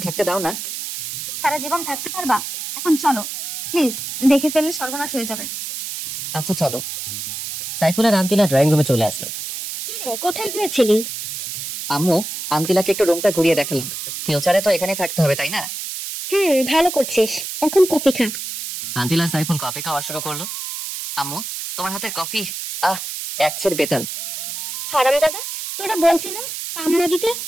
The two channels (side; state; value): right; noise; hiss, 7 dB below the sound